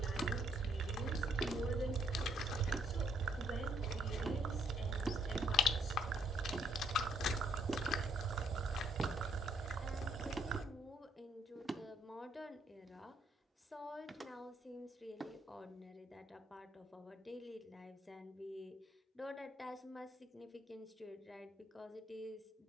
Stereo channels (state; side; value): normal; both; correlation 0.69